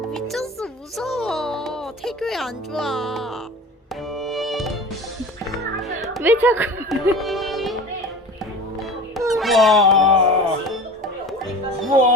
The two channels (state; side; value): normal; both; correlation 0.36